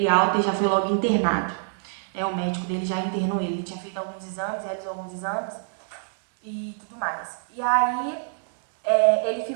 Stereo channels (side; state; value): left; silent; digital silence